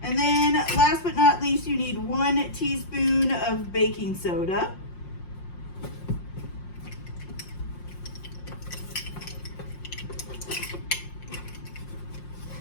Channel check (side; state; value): right; late; 5.6 ms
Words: And then last but not least, you need 1 teaspoon of baking soda.